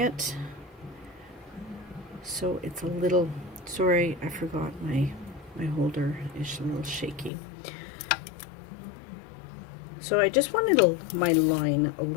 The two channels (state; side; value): drops out; right; at 7.3 s